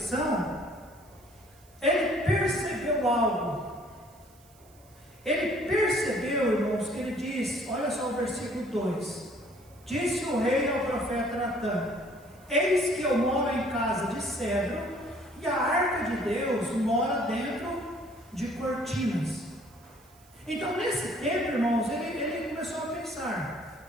ele percebeu algo. Ele percebeu, irmãos, que ele diz, olha só o versículo 2: Disse o rei ao profeta Natã: Eis que eu moro em casa de cedro, e a arca de Deus mora dentro de cortinas. Então, nesse tempo, irmãos, ele começou a pensar:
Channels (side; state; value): right; noise; hiss, 28 dB below the sound